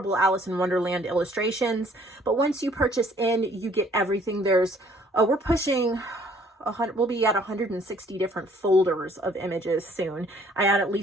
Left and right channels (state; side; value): normal; both; correlation 0.60